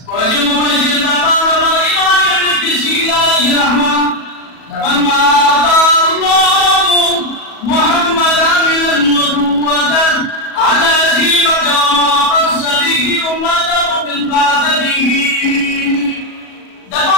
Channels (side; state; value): right; late; 37 ms